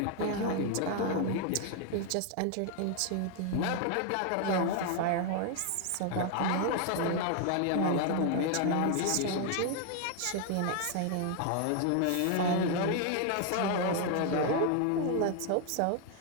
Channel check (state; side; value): different; both; correlation 0.00